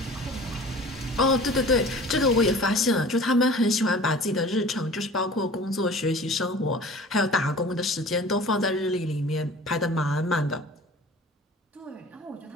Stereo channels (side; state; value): both; normal; correlation 0.43